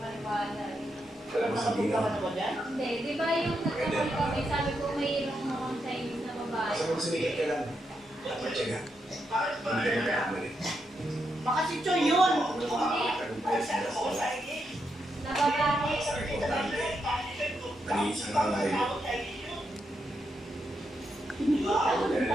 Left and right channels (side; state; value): both; normal; correlation 0.83